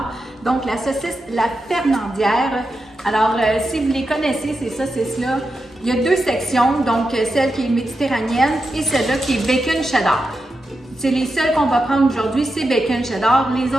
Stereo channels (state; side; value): normal; both; correlation 0.88